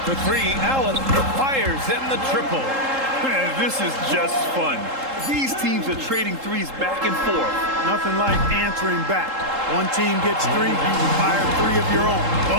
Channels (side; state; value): left; late; 3.7 ms